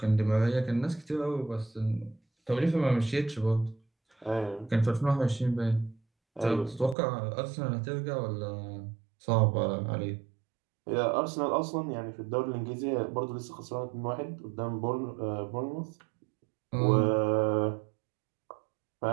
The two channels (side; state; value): left; drops out; at 7.0 s